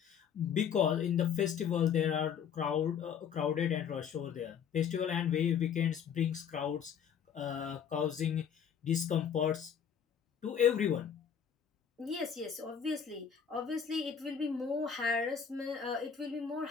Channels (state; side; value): quieter; right; 7.7 dB